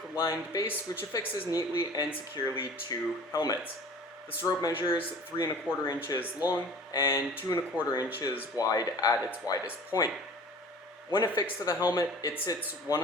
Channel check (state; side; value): normal; both; correlation 0.43